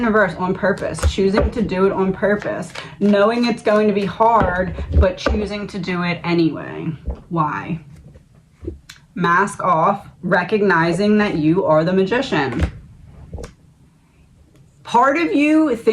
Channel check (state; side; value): identical; both; correlation 1.00